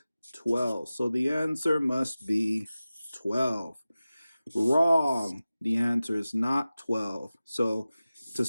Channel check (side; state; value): both; inverted; correlation -0.96